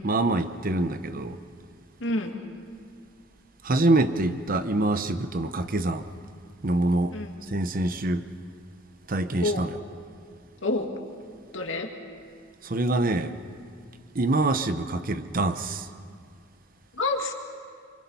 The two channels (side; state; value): both; normal; correlation 0.53